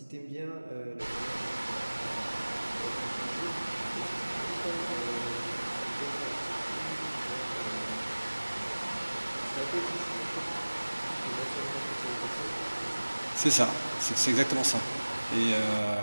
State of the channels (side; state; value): both; inverted; correlation -1.00